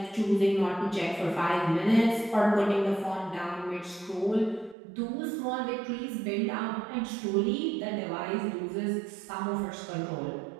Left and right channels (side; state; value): left; drops out; at 4.8 s